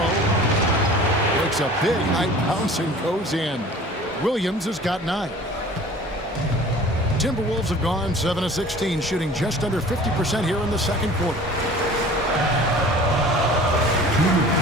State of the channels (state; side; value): normal; both; correlation 0.45